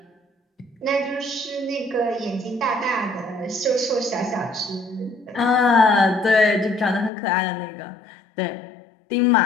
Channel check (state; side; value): drops out; right; at 7.1 s